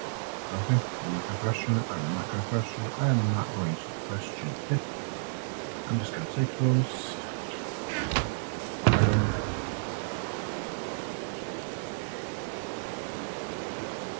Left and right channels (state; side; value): silent; left; 57 dB below the other